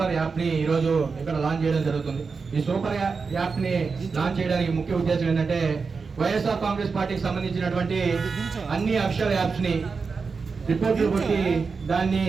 యాప్ ని ఈరోజు ఇక్కడ లాంచ్ చేయడం జరుగుతుంది. ఈ సూపర్ యాప్ ని లాంచ్ చేయడానికి ముఖ్య ఉద్దేశం ఏంటంటే వైఎస్ఆర్ కాంగ్రెస్ పార్టీకి సంబంధించినటువంటి అన్ని అఫీషియల్ యాప్స్ ని రిపోర్ట్లు కొట్టి దాన్ని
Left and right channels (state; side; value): quieter; left; 4.9 dB